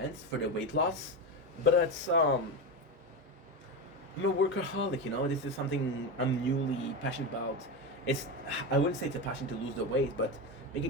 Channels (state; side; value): normal; both; correlation 0.17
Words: for the weight loss, but it's I'm a workaholic, you know. This is something I'm newly passionate about. I wouldn't say it's a passion to lose the weight, but